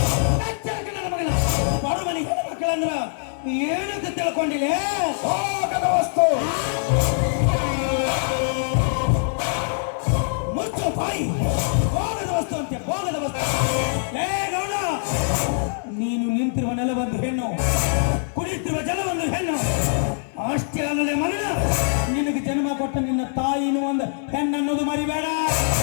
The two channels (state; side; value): silent; right; 63 dB below the other